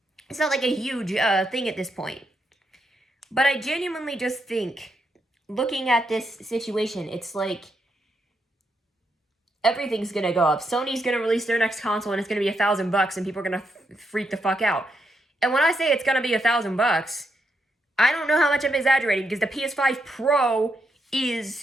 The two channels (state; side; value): normal; both; correlation 0.81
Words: It's not like a huge thing at this point. But I genuinely just think, looking at this situation, it's like, everything's going to go up. Sony's going to release their next console and it's going to be $1,000 and people are going to freak the fuck out. And when I say it's going to be $1,000, I don't know how much I'm exaggerating, because the PS5 Pro